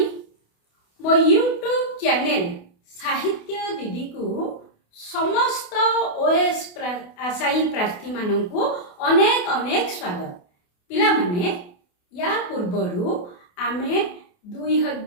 मो यूट्यूब चैनल साहित्य दीदी को समस्त ओएस आशायी प्रार्थी मानू अनेक अनेक स्वागत। पिला माने या पूर्वरु आमे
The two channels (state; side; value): late; right; 28 ms